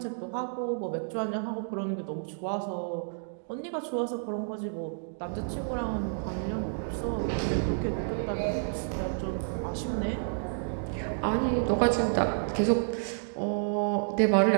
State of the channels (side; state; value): left; silent; digital silence